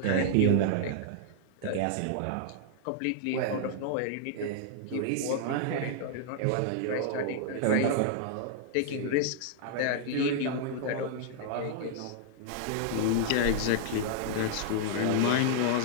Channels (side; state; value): both; different; correlation -0.01